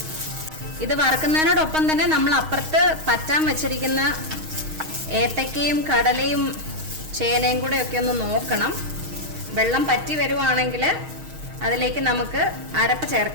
ഇത് വറക്കുന്നതിനോടൊപ്പം തന്നെ നമ്മൾ അപ്പുറത്ത് പറ്റാൻ വെച്ചിരിക്കുന്ന ഏത്തക്കയും കടലയും ചേനയും കൂടെ ഒക്കെ ഒന്ന് നോക്കണം. വെള്ളം പറ്റി വരുവാണെങ്കിൽ അതിലേക്ക് നമുക്ക് അരപ്പ്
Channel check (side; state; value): left; late; 6.4 ms